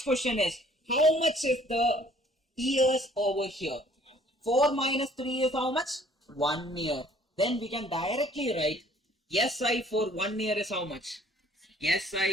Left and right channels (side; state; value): both; normal; correlation 0.57